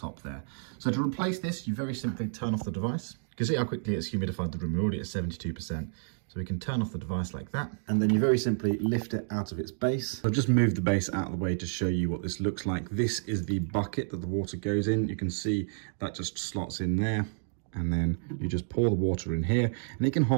there. So to replace this, you very simply turn off the device. You can see how quickly it's humidified the room. We're already at 72%. So we can turn off the device like that, and then you very simply lift it out of its base. I've just moved the base out of the way to show you what this looks like. This is the bucket that the water goes in. You can see that just slots in there, and then you just pour the water in here, and it can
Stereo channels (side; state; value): left; silent; digital silence